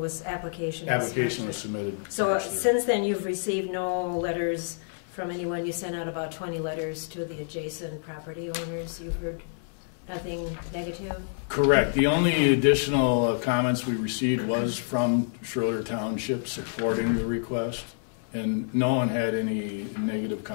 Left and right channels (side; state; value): right; silent; 59 dB below the other